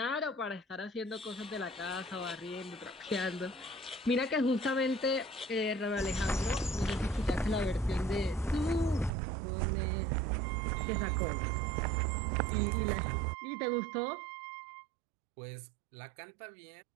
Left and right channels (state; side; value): drops out; left; at 9.1 s